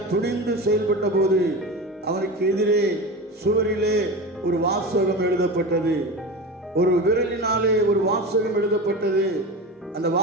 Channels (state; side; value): normal; both; correlation 0.26